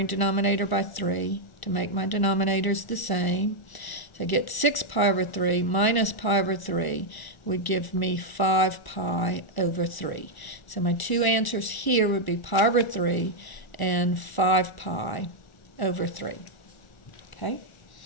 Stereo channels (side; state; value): right; late; 1.0 ms